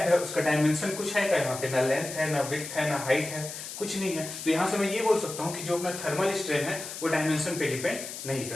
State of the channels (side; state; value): left; noise; hiss, 9 dB below the sound